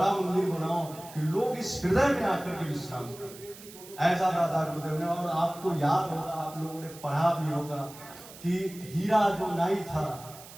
मंदिर बनाओ कि लोग इस हृदय में आकर के विश्राम करें। ऐसा दादा गुरुदेव ने। और आपको याद होगा, आप लोगों ने पढ़ा भी होगा कि हीरा जो नाई था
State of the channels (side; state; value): right; noise; hiss, 17 dB below the sound